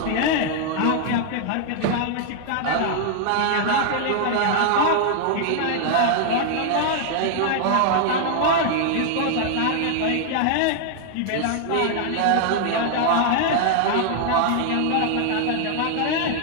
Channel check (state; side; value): different; both; correlation 0.00